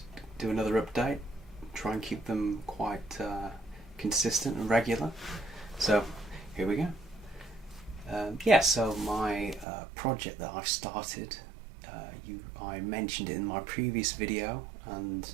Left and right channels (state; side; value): drops out; left; at 9.7 s